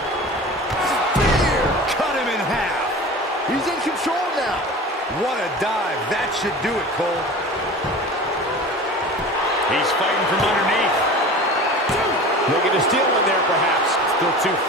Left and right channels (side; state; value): both; normal; correlation 0.36